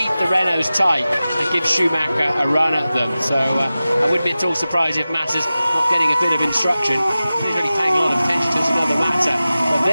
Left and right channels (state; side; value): inverted; both; correlation -0.95